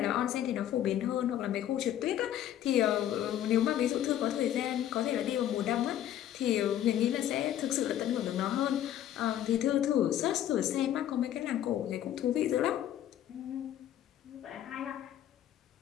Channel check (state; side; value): quieter; right; 11.5 dB